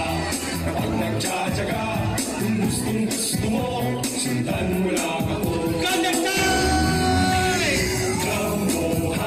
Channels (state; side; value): noise; left; hum, 26 dB below the sound